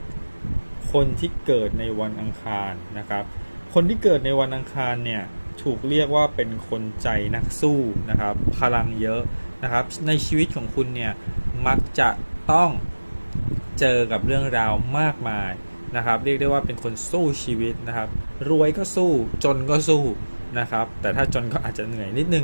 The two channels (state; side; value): inverted; both; correlation -1.00